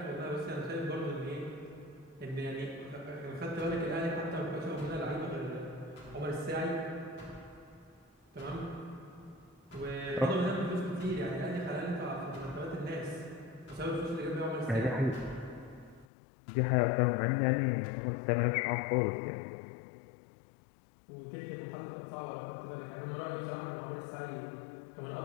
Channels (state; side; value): drops out; right; at 16.1 s